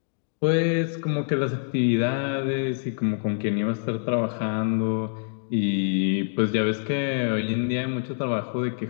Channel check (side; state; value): right; silent; digital silence